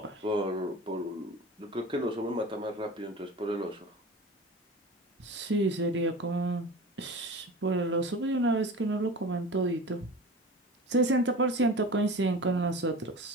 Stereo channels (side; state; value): both; normal; correlation 0.35